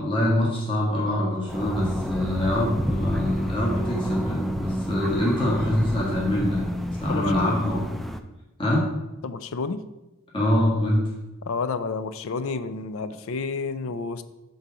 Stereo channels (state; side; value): normal; both; correlation 0.70